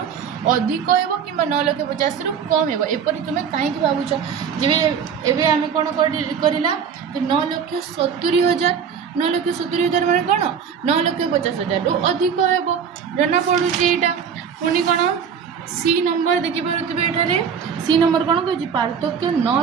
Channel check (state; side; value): quieter; left; 7.2 dB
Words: अधिक हेब कि 9,50,000 रु कम हेब एपरी तुम कहीं भावुच जब एवं आम कौन करला 9,70,000 9,70,000 मैंने कौन 9,50,000 रु अधिक हेब जना पड़ू यहाँ पुणी कौन सी नंबर देखिपे एठारे सी नंबर कौन कह पार्थक्य